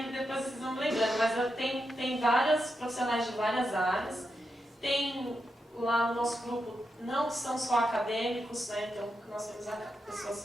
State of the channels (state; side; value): normal; both; correlation 0.86